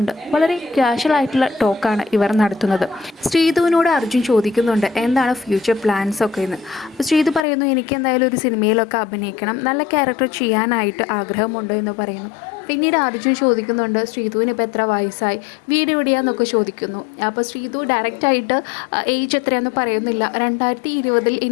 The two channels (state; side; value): drops out; right; at 7.5 s